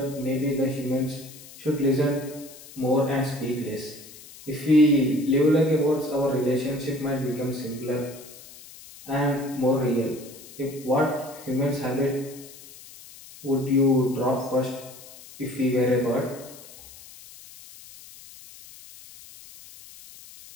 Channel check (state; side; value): noise; left; hiss, 18 dB below the sound